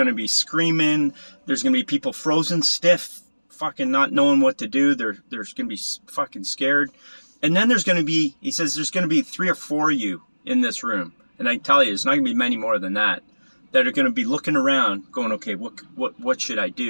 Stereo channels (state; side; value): inverted; both; correlation -1.00